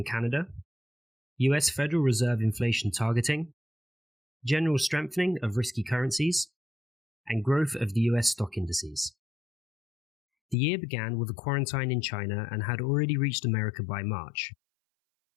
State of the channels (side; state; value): right; drops out; at 10.6 s